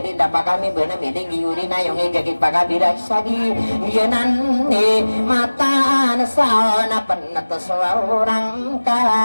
din dapat kami na miling yuri na yung igagit pagabira sagi yanan ni mata na sa na panata sa orang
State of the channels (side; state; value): both; inverted; correlation -1.00